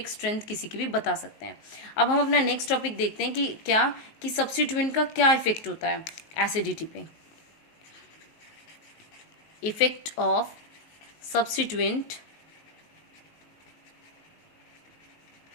स्ट्रेंथ किसी की भी बता सकते हैं। अब हम अपना नेक्स्ट टॉपिक देखते हैं कि क्या कि सब्स्टिट्यूएंट का क्या इफेक्ट होता है एसिडिटी पे। Effect of substituent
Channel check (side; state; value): right; late; 19 ms